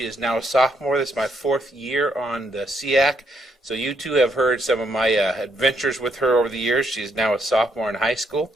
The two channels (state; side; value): normal; both; correlation 0.74